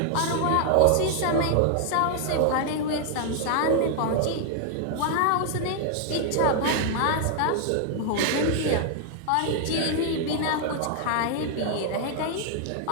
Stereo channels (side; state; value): both; different; correlation 0.00